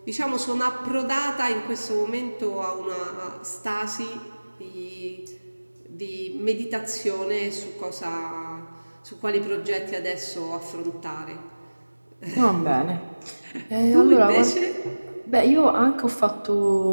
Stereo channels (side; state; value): both; inverted; correlation -1.00